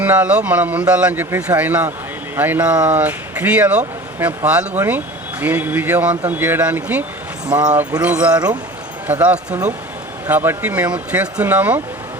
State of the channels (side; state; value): both; normal; correlation 0.39